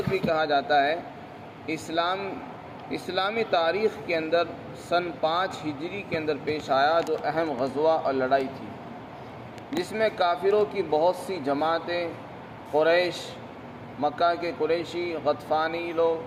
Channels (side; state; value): both; identical; correlation 1.00